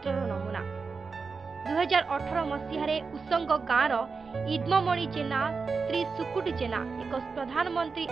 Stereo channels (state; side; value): quieter; left; 4.8 dB